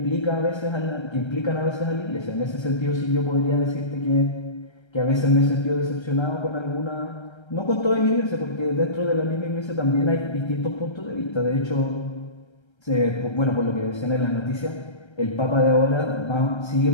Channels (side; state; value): right; late; 1.3 ms